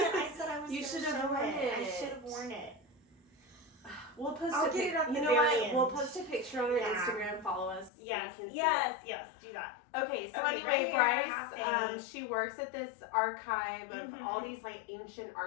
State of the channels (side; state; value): right; drops out; at 7.9 s